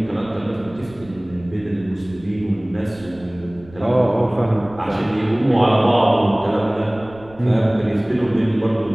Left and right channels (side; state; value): right; noise; rumble, 22 dB below the sound